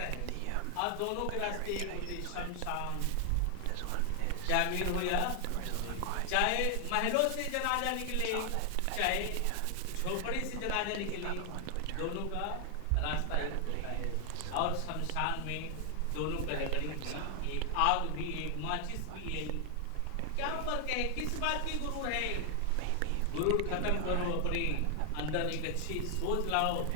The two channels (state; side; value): different; both; correlation 0.00